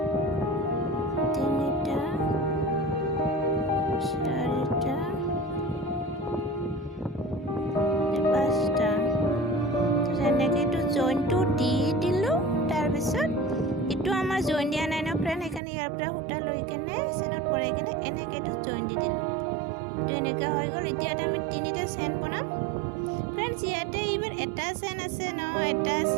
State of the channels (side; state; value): left; drops out; at 15.6 s